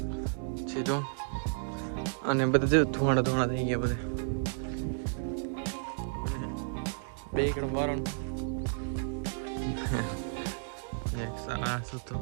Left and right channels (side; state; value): left; silent; digital silence